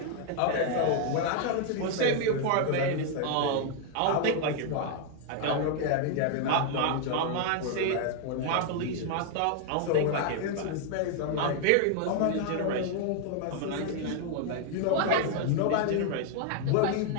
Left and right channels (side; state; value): both; different; correlation 0.00